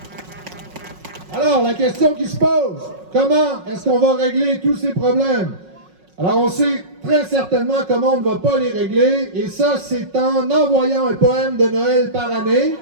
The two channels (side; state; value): left; late; 5.5 ms